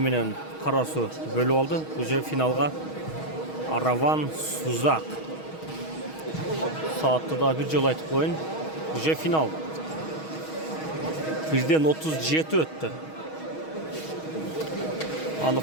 менен Карасу бөлүп алды. Уже финалга Араван Сузак. Саатты да бир жолу айтып коеюн. Уже финал. 1:37 өттү.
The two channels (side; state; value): right; late; 6.3 ms